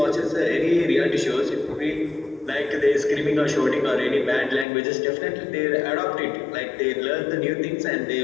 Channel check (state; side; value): drops out; right; at 4.7 s